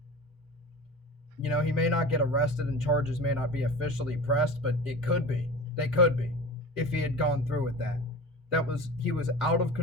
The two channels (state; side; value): normal; both; correlation 0.34